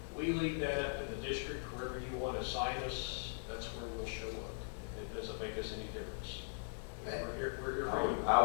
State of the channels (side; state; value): right; silent; digital silence